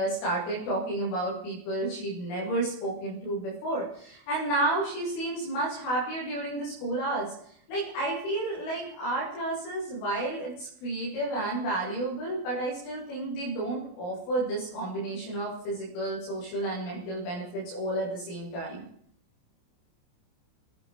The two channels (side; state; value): right; late; 28 ms